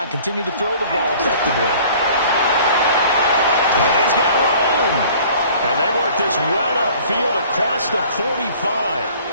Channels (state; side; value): inverted; both; correlation -0.50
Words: and continue to throw the ball effectively. And he's got room. And they work this well upfield across the 45.